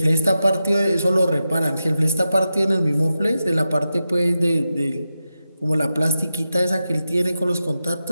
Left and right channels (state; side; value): inverted; both; correlation -0.90